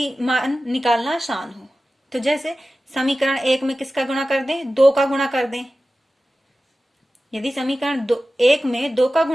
मान निकालना आसान हो। तो जैसे समीकरण 1 में किसका गुणा कर दें, 2 का गुणा कर दें। यदि समीकरण 1 में 2 का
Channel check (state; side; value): normal; both; correlation 0.95